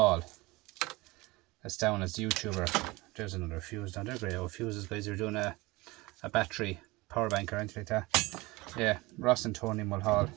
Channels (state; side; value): quieter; left; 22.2 dB